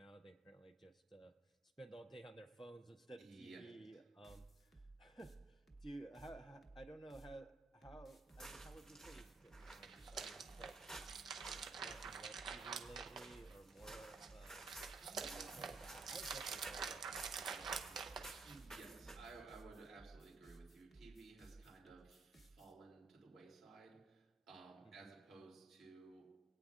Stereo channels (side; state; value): left; quieter; 4.1 dB